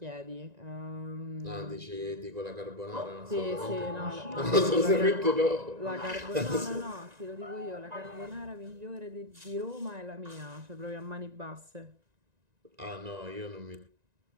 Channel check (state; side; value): late; left; 1.9 ms